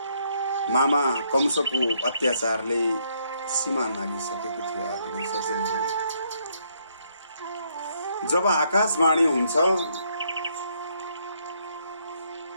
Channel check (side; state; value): both; inverted; correlation -0.72